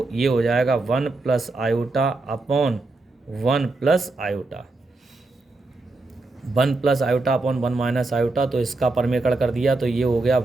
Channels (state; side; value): quieter; left; 3.3 dB